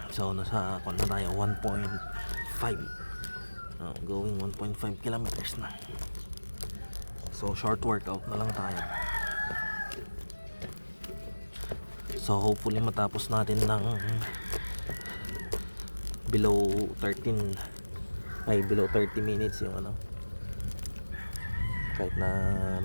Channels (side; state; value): both; inverted; correlation -1.00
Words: So nasa na tayo 1.5, going 1.5 kilometers na. So short workout na lang tayo. So hopefully matapos natin ng below 30 minutes yung ano, kahit na